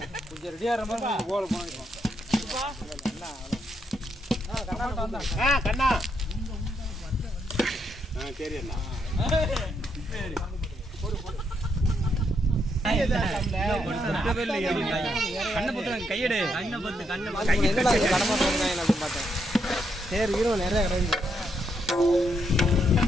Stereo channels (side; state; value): both; normal; correlation 0.78